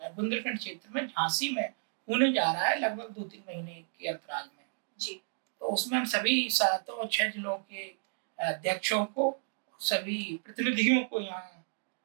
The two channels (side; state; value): left; silent; digital silence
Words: बुंदेलखंड क्षेत्र में झांसी में होने जा रहा है लगभग 2-3 महीने के अंतराल में। जी। तो उसमें हम सभी 7 और 6 जिलों के अध्यक्षों को, सभी प्रतिनिधियों को यहाँ